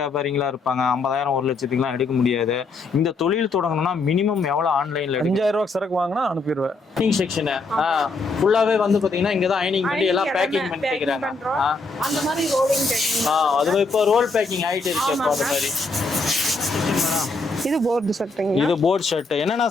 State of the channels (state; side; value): quieter; right; 3.6 dB